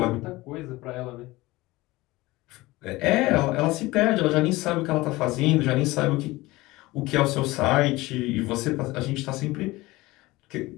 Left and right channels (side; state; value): right; quieter; 20.1 dB